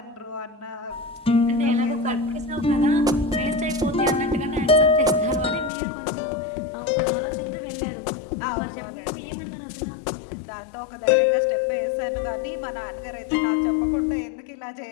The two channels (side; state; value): right; drops out; at 5.7 s